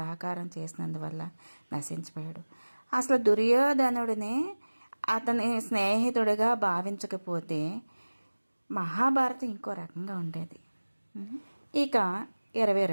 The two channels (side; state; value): both; inverted; correlation -1.00